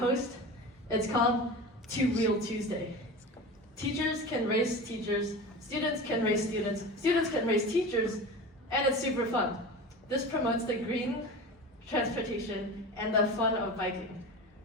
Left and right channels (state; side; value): normal; both; correlation 0.31